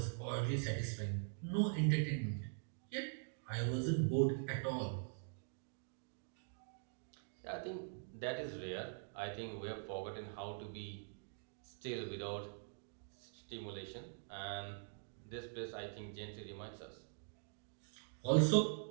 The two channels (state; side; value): silent; left; digital silence